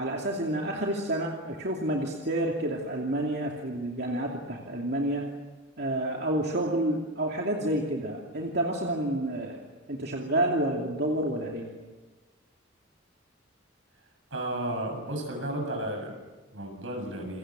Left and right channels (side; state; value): both; normal; correlation 0.12